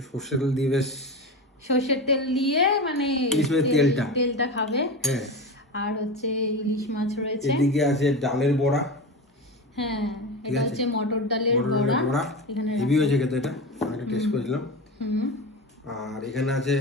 সর্ষের তেল দিয়ে বেশ। সর্ষের তেল দিয়ে মানে ইলিশ মাছের তেলটা। তেলটা খাবে। হ্যাঁ, আর হচ্ছে ইলিশ মাছ রয়েছে। এদিকে আছে ডালের বড়া। হ্যাঁ, ঠিক এটা আছে। হচ্ছে মটর ডালের মটর বড়া। ডালের বড়া এখানে হেভি রাখো। হয়েছে খেতে, এটা আমি একটা টেস্ট করেছিলাম। হুম, আর এখানে আছে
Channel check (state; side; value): normal; both; correlation 0.24